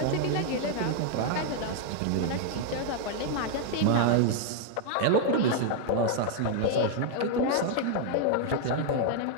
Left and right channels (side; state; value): both; different; correlation 0.00